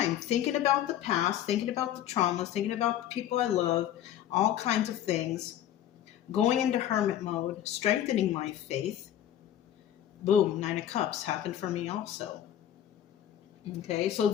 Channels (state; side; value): quieter; right; 11.4 dB